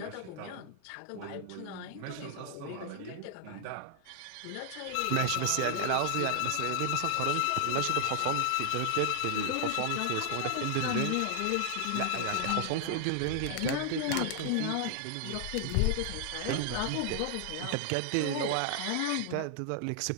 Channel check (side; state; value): both; different; correlation 0.00